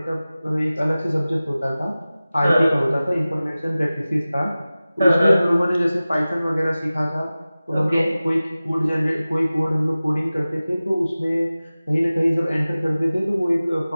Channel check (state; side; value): inverted; both; correlation -0.97